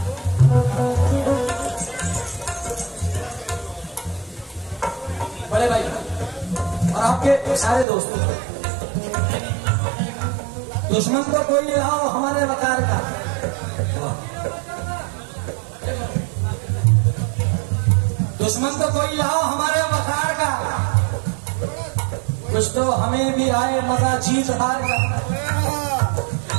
बड़े भाई और आपके सारे दोस्तों, दुश्मन को कोई लाओ हमारे वकार का, दुश्मन को कोई लाओ हमारे वकार का, कुछ तो हमें भी आए मजा जीत हार का।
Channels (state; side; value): drops out; left; at 7.9 s